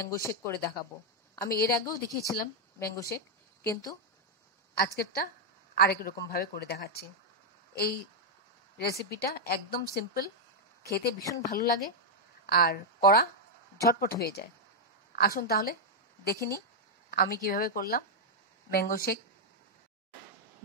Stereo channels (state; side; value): normal; both; correlation -0.02